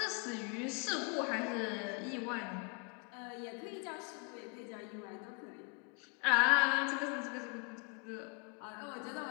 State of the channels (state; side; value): quieter; right; 34.8 dB